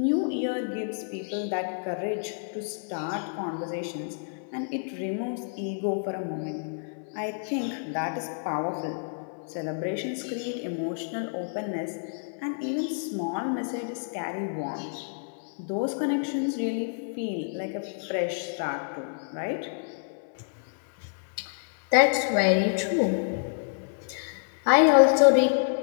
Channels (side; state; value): right; silent; 59 dB below the other